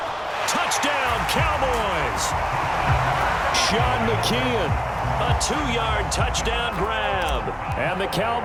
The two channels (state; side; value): identical; both; correlation 1.00